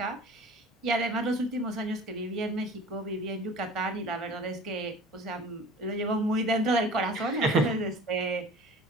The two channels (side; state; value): both; normal; correlation 0.44